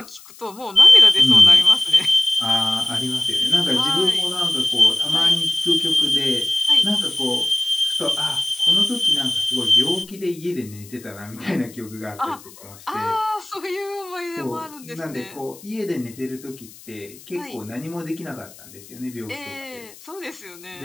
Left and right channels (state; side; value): noise; left; hiss, 21 dB below the sound